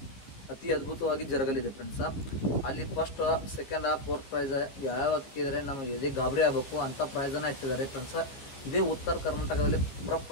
ಅತಿ ಅದ್ಭುತವಾಗಿ ಜರಗಲಿದೆ ಫ್ರೆಂಡ್ಸ. ಅಲ್ಲಿ ಫಸ್ಟ್, ಸೆಕೆಂಡ್, ಫೋರ್ತ್ ಪ್ರೈಸ್ ಯಾವ ಹಾಕಿದರೆ ನಮಗೆ ಎದೆ ಗಾಬರಿ ಆಗಬೇಕು ಅಂಥ ಪ್ರೈಸನ್ನು ಇಟ್ಟಿದ್ದಾರೆ ಫ್ರೆಂಡ್ಸ. ಇದೇ ಉತ್ತರ ಕರ್ನಾಟಕದಲ್ಲಿ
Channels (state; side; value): late; right; 15 ms